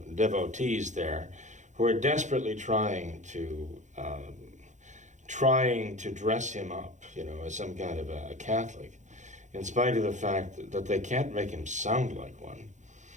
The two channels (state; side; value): late; left; 0.35 ms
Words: devotees there, who are desperately trying to dress him up, as some kind of a Catholic, in spite of the fact that they can't make him sound like one.